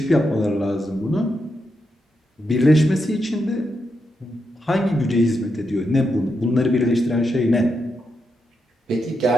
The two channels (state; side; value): normal; both; correlation 0.84